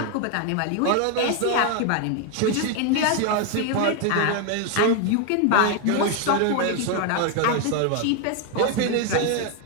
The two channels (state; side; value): different; both; correlation 0.01